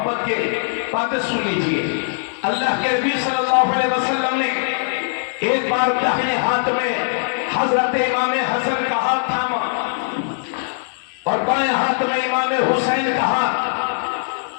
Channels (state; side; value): silent; right; digital silence